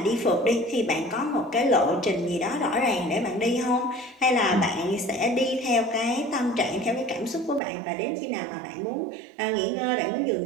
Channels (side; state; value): left; drops out; at 7.6 s